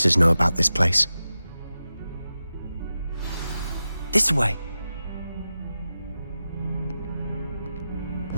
know about this place. This way.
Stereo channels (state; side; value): inverted; both; correlation -0.92